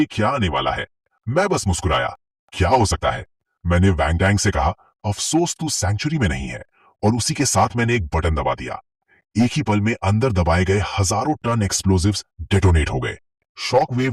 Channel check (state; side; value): identical; both; correlation 1.00